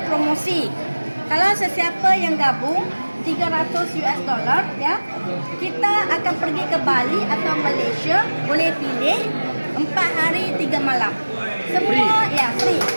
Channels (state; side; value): inverted; both; correlation -1.00